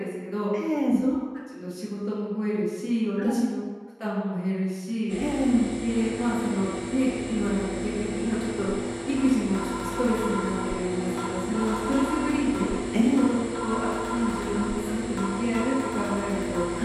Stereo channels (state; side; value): identical; both; correlation 1.00